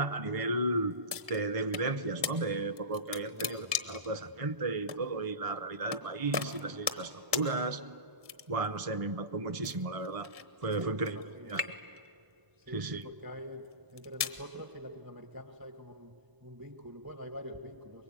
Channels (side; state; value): left; late; 1.0 ms